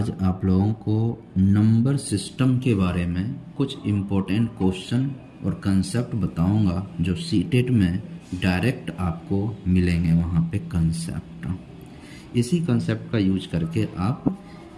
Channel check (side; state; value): both; identical; correlation 1.00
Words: आप लोगों को नंबर सिस्टम के बारे में कुछ इम्पोर्टेंट क्वेश्चन और कंसेप्ट बताऊंगा जो सीटेट में डायरेक्ट आपको मिलेंगे। वहाँ पे कंसेप्ट, इसी कंसेप्ट का यूज करके आप